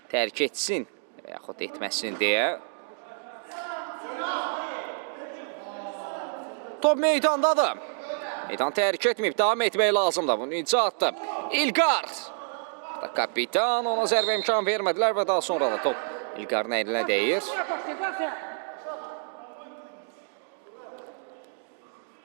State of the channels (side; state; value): left; silent; digital silence